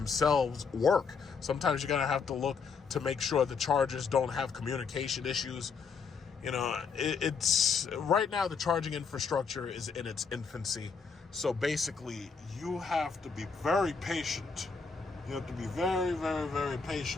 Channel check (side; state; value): right; quieter; 5.4 dB